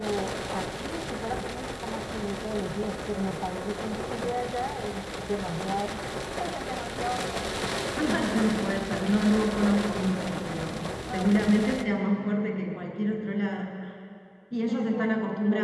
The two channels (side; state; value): both; identical; correlation 1.00